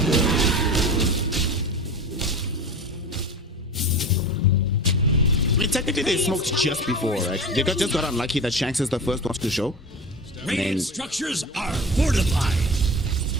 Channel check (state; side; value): normal; both; correlation 0.31